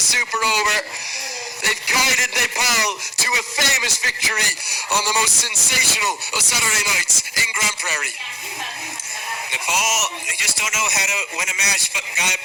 super over. They've guided Nepal to a famous victory on the most sensational of Saturday nights in Grand Prairie. Nepal, they just don't know how to win a match by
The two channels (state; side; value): identical; both; correlation 1.00